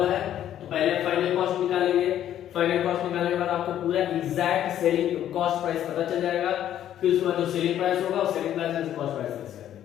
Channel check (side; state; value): right; quieter; 11.2 dB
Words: है तो पहले फाइनल कॉस्ट निकालेंगे, फाइनल कॉस्ट निकालने के बाद आपको पूरा एग्जैक्ट सेलिंग कॉस्ट प्राइस पता चल जाएगा, फिर उसके बाद जो सेलिंग प्राइस होगा उस सेलिंग प्राइस में कॉस्ट प्राइस लेस कर